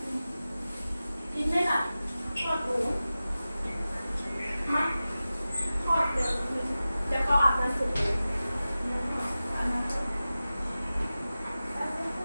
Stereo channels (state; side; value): inverted; both; correlation -0.95